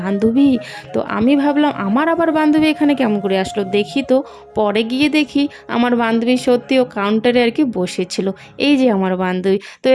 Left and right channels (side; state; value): both; identical; correlation 1.00